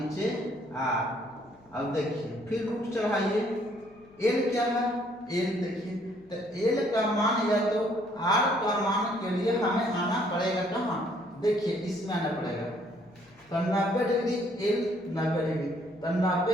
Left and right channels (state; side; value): noise; left; hum, 30 dB below the sound